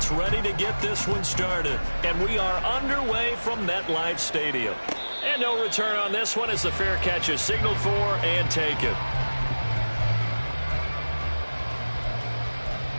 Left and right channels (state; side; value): inverted; both; correlation -1.00